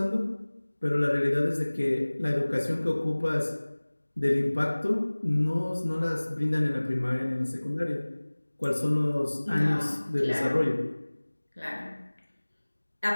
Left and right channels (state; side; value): inverted; both; correlation -1.00